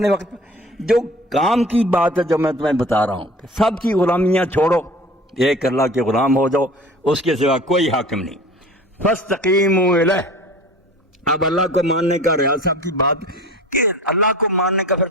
وقت۔ جو کام کی بات ہے جو میں تمہیں بتا رہا ہوں کہ سب کی غلامیاں چھوڑو، ایک اللہ کے غلام ہو جاؤ، اس کے سوا کوئی حاکم نہیں۔ فاستقیموا الیہ، اب اللہ کو ماننے کا ریاض صاحب کی بات کہ اللہ کو ماننے کا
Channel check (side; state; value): both; normal; correlation 0.41